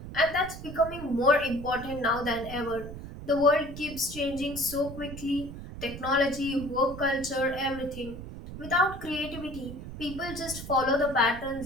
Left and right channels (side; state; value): right; noise; rumble, 11 dB below the sound